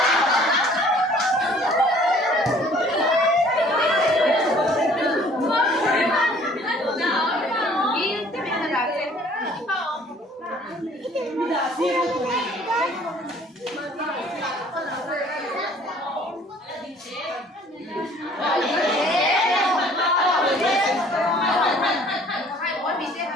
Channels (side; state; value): both; normal; correlation 0.55